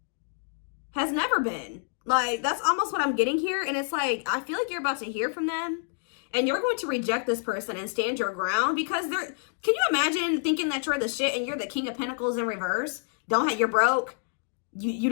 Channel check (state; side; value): silent; right; 59 dB below the other